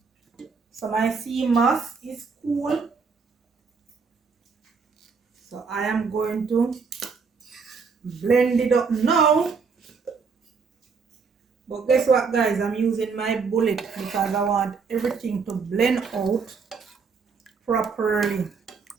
So my sea moss is cool. So I am going to blend it up now. But guess what guys, I'm using my bullet because I want everything to blend out properly.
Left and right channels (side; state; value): left; quieter; 5.2 dB